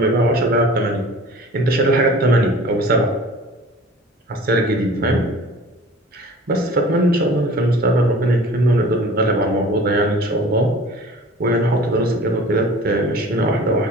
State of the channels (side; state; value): both; normal; correlation 0.45